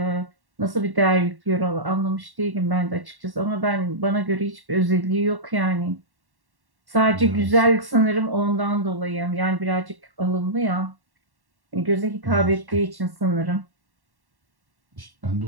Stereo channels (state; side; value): late; left; 1.1 ms